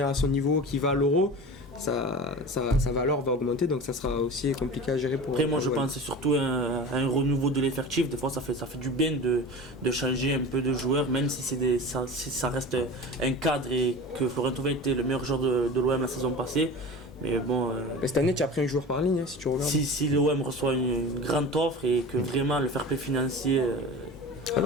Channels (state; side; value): normal; both; correlation 0.34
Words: à son niveau, qu'il va à l'Euro, sa valeur va augmenter, donc ça sera aussi compliqué à gérer pour... Après moi je pense que c'est surtout un renouveau de l'effectif. Des fois ça fait du bien de changer un peu de joueurs, même si ça reste un cadre et que Florent Thauvin était le meilleur joueur de l'OM la saison passée. Mais bon, cette année tu as pris un joueur par ligne, si tu regardes. Si l'OM reçoit une grande offre et que vraiment le fair play financier Ah